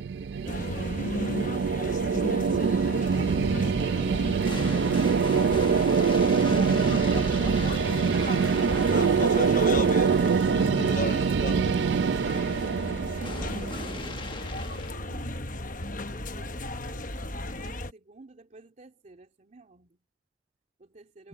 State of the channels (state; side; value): quieter; left; 4.5 dB